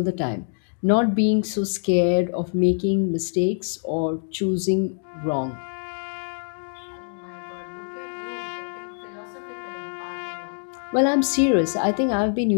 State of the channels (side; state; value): right; silent; digital silence